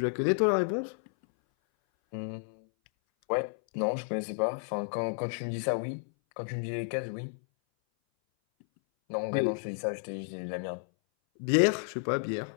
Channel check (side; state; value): right; silent; 57 dB below the other